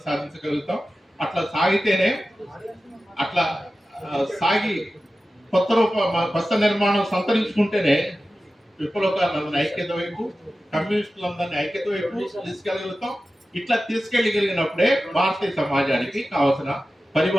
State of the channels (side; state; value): both; normal; correlation 0.94